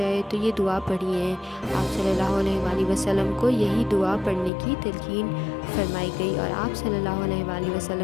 تو یہ دعا پڑھیے۔ آپ صلی اللہ علیہ وآلہ وسلم کو یہی دعا پڑھنے کی تلقین فرمائی گئی اور آپ صلی اللہ علیہ وآلہ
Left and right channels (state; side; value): drops out; right; at 4.5 s